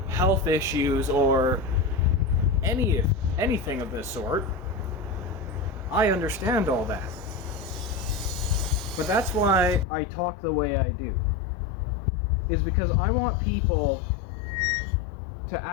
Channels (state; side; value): drops out; right; at 9.9 s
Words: health issues or anything of this sort. I understand all that. But that's why I talk the way I do. Is because I want people to